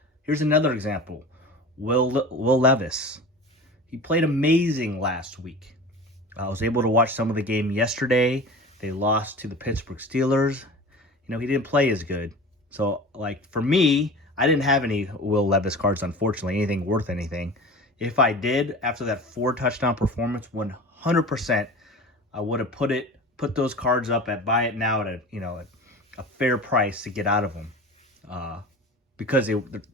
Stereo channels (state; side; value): normal; both; correlation 0.35